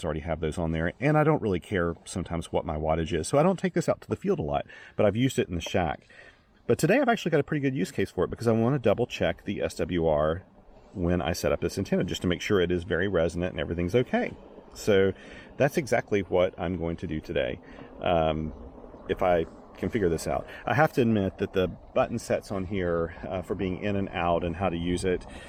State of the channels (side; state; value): both; identical; correlation 1.00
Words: already have those on there, and I don't really care sometimes what my wattage is, so I don't take this out to the field a lot, but I've used it in the shack. But today I've actually got a pretty good use case for it, because I want to double check the SWR when I set up this antenna, just to make sure it is very resonant and everything's okay. So that's exactly what I'm going to do today, if I can figure this out. I have to admit that the button sets on here for being in and out and how to use it,